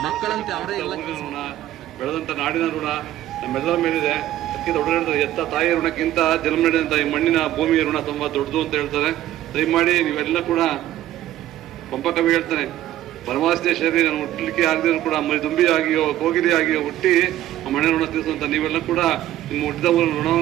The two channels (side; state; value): left; quieter; 13.5 dB